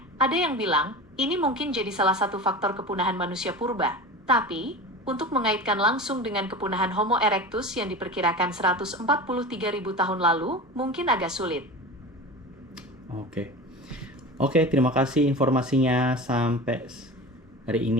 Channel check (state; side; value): normal; both; correlation 0.32